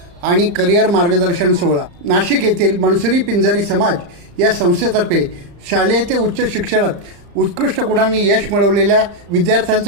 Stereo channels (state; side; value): late; left; 35 ms